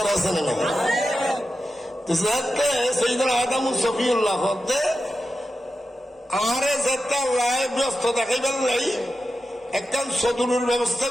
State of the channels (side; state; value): both; normal; correlation 0.91